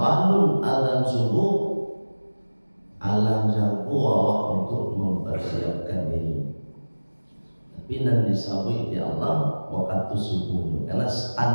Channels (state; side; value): inverted; both; correlation -1.00